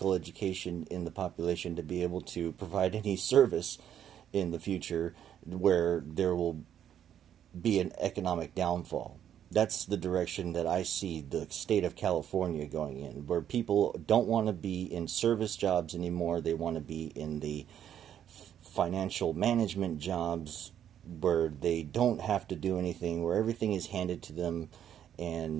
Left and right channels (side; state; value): left; quieter; 9.9 dB